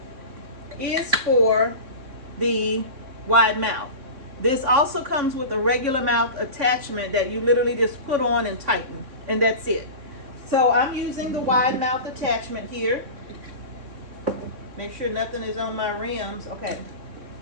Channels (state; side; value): late; left; 3.6 ms